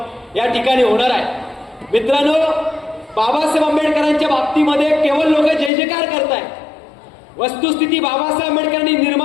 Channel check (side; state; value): right; drops out; at 5.7 s